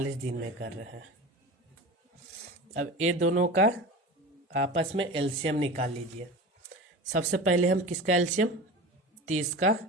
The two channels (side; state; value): both; normal; correlation 0.32